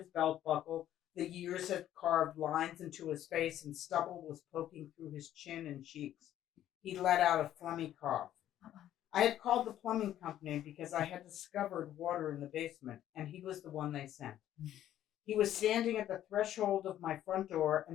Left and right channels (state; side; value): quieter; right; 12.0 dB